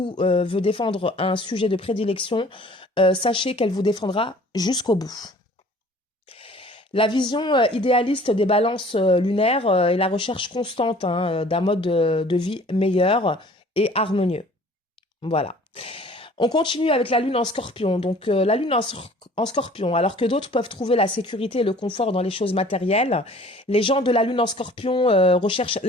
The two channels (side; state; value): both; normal; correlation 0.50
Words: veut défendre un sujet de prédilection, sachez qu'elle vous défendra jusqu'au bout. La vision idéaliste des balances lunaires est la recherche constante d'un mode de vie meilleur et harmonieux. Voilà. On continue avec la lune en scorpion. Donc la lune en scorpion, alors que d'autres peuvent trouver la sécurité et le confort dans les choses matérielles, les gens de la lune en scorpion recherchent